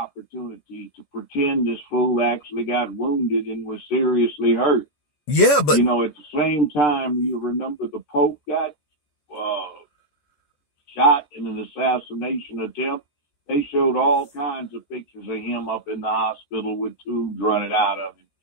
to pretend this fool actually got wounded and was seriously hurt. Yeah, but... You know, at the same time, you remember the Pope got shot in an assassination attempt. They showed all kinds of pictures of him up in the hospital with tubes running out of him.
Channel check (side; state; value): right; late; 14 ms